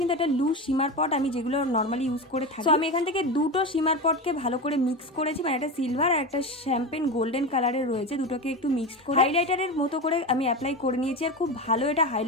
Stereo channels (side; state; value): both; normal; correlation 0.21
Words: একটা লুজ শিমার পট আমি যেগুলো নর্মালি ইউজ করে থাকি, তো আমি এখান থেকে দুটো শিমার পটকে ভালো করে মিক্স করেছি, মানে একটা সিলভার আর একটা শ্যাম্পেন গোল্ডেন কালারের রয়েছে, দুটোকে একটু মিক্স করে হাইলাইটারের মতো করে আমি অ্যাপ্লাই করে নিয়েছি, আর খুব ভালো এটা